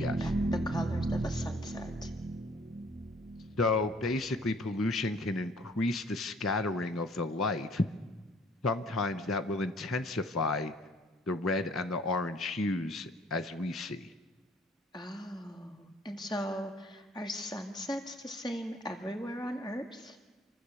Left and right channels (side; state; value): both; normal; correlation 0.57